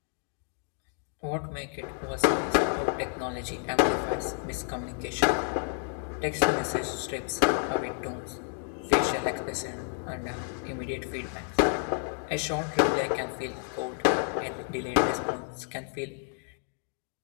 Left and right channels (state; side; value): silent; right; 57 dB below the other